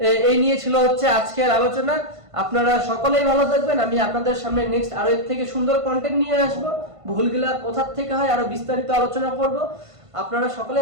এই নিয়ে ছিল হচ্ছে আজকের আলোচনা। আপনারা সকলেই ভালো থাকবেন। আমি আপনাদের সামনে নেক্সট আরো এর থেকে সুন্দর কন্টেন্ট নিয়ে আসবো, ভুলগুলা কোথা থেকে হয় আরো বিস্তারিত আলোচনা করব। আপনারা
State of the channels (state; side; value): late; left; 1.5 ms